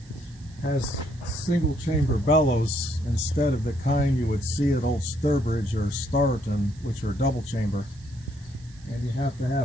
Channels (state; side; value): noise; right; hiss, 26 dB below the sound